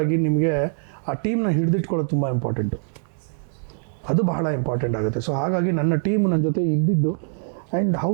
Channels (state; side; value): silent; left; digital silence